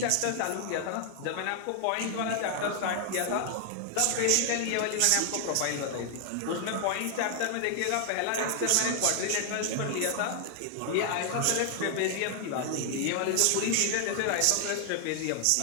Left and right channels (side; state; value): both; different; correlation 0.00